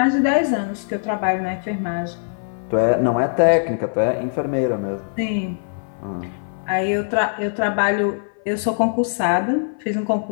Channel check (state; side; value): silent; right; 58 dB below the other